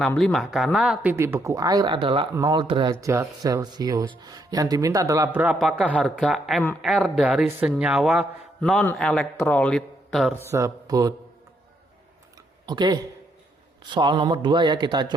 karena titik beku air adalah 0 derajat Celcius. Yang diminta adalah berapakah harga MR dari senyawa non-elektrolit tersebut. Oke. Soal nomor 2 ya, kita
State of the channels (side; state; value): both; normal; correlation 0.75